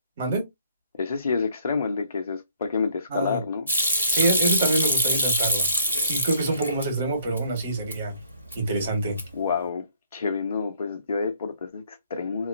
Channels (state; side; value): inverted; both; correlation -0.63